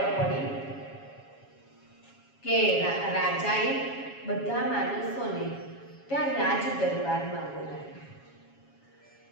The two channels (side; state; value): right; late; 7.2 ms